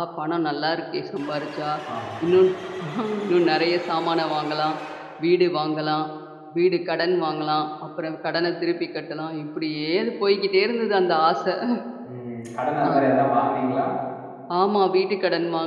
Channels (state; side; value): identical; both; correlation 1.00